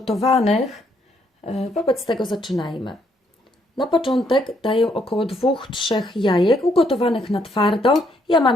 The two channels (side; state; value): both; normal; correlation 0.72